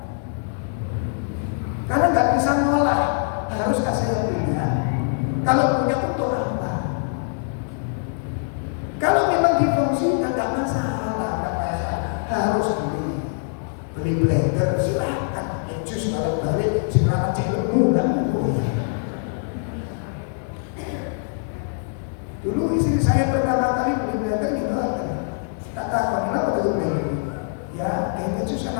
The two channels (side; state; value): right; silent; digital silence